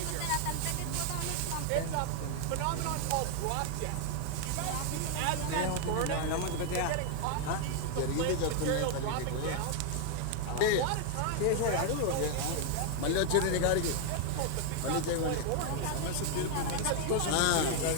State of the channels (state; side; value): different; both; correlation 0.00